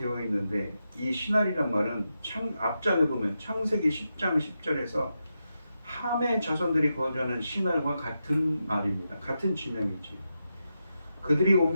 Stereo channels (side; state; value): both; inverted; correlation -0.87